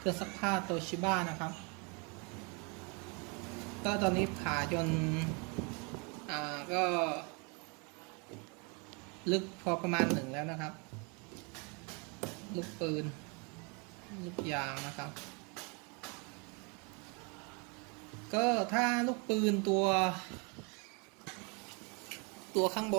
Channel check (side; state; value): left; quieter; 32.8 dB